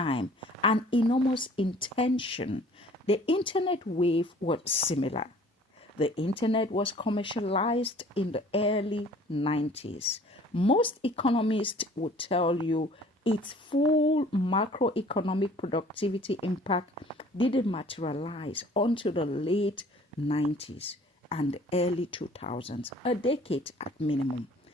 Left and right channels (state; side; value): normal; both; correlation 0.52